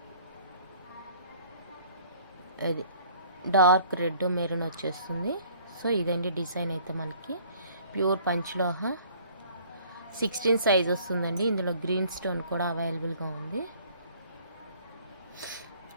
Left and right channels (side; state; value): both; inverted; correlation -0.55